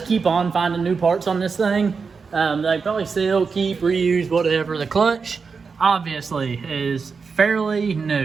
keep on finding new parts on this thing. They probably sell, keep, reuse, whatever. The clutch, obviously, is fairly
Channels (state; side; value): quieter; left; 5.2 dB